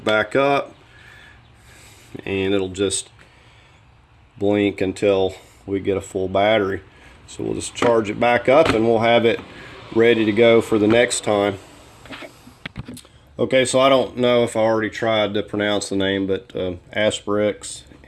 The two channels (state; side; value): identical; both; correlation 1.00